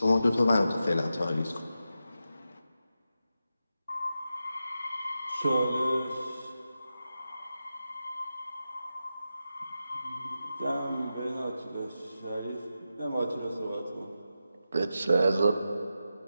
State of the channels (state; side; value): inverted; both; correlation -0.90